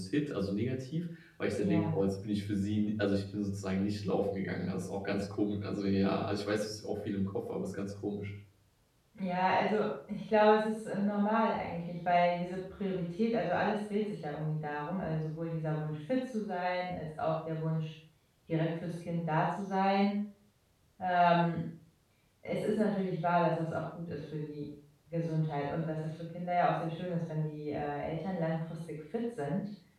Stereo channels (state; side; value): identical; both; correlation 1.00